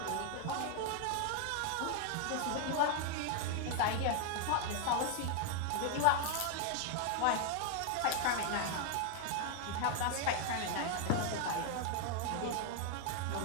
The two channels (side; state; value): both; different; correlation 0.00